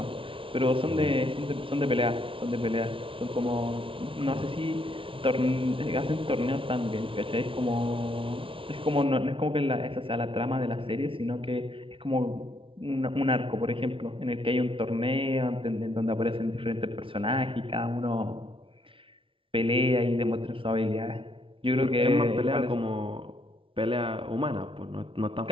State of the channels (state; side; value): late; left; 0.25 ms